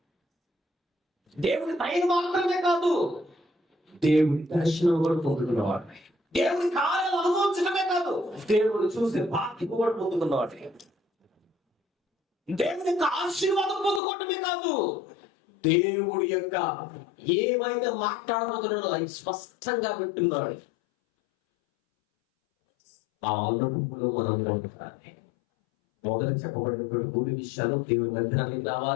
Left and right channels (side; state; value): right; drops out; at 14.0 s